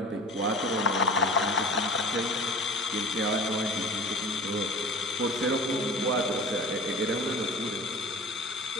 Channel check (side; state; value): both; normal; correlation 0.38